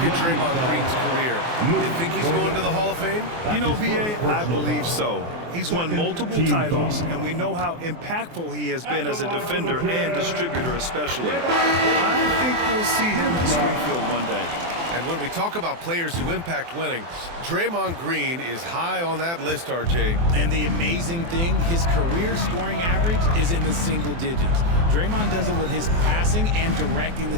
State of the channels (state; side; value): late; left; 24 ms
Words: Draymond Green's career, you think he's going to the Hall of Fame? You know, B.A., I believe so. He's won multiple titles, and we know how impactful he has been as a defender and distributor especially. I think we'll see him in Springfield one day. And when we talk about players who impact winning, Draymond Green is high on that list, RJ. And the amazing thing, his career scoring average is in the single digits. Draymond does it with his passing and directing the